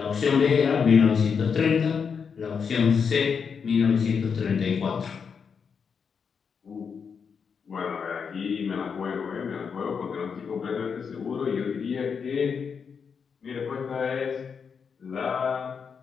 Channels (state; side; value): quieter; right; 6.2 dB